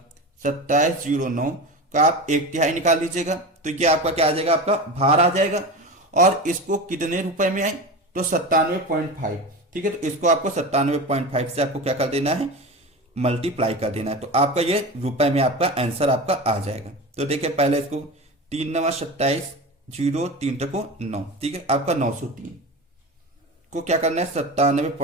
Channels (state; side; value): normal; both; correlation 0.27